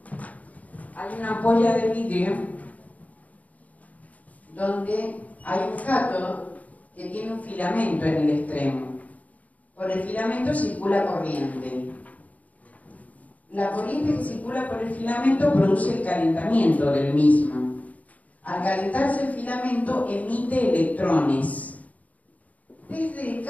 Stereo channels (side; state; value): right; late; 0.072 ms